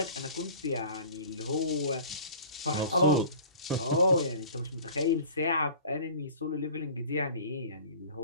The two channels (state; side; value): inverted; both; correlation -0.44